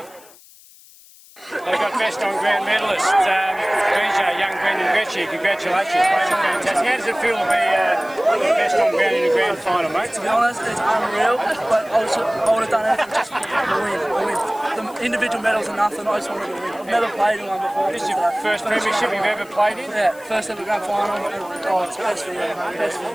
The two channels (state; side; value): noise; left; hiss, 24 dB below the sound